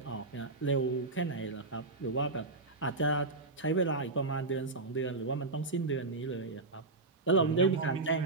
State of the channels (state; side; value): quieter; left; 3.4 dB